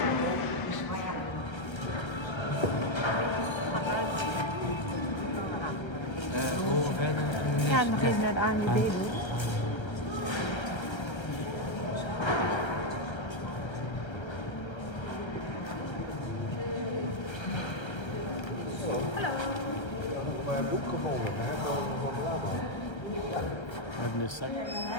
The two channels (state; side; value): late; right; 1.3 ms